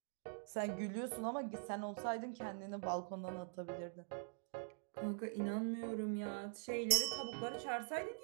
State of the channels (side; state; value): left; silent; digital silence